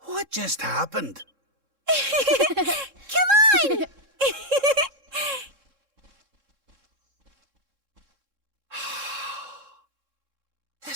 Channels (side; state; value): left; late; 3.7 ms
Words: What just happened? Come on!